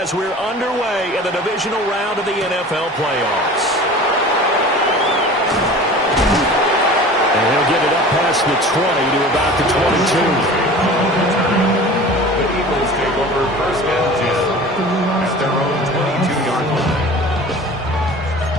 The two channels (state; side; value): normal; both; correlation 0.40